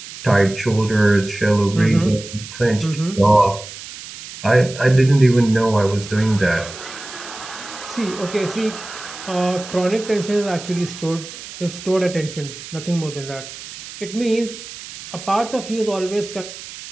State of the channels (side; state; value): right; noise; hiss, 13 dB below the sound